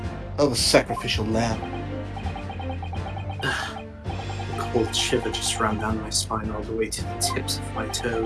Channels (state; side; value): identical; both; correlation 1.00